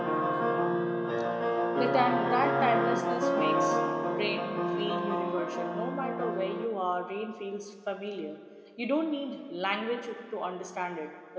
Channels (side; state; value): both; identical; correlation 1.00